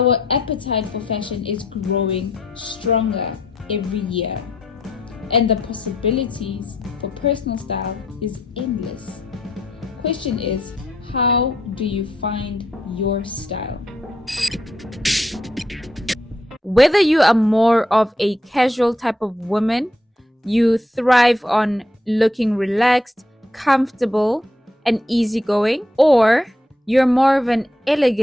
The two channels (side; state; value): both; normal; correlation 0.75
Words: appetite for fashion is growing stronger every year, and the possibilities for personal style is endless. Question is, how do you find your style? Whether you are more of a casual type of woman, you thrive on looking relaxed, comfortable, and easygoing, or you're more of an